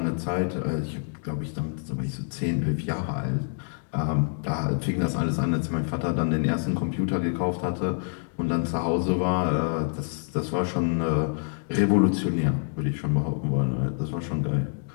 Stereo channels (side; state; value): right; silent; 60 dB below the other